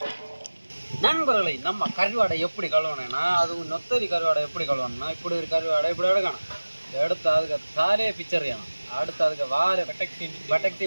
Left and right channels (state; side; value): inverted; both; correlation -1.00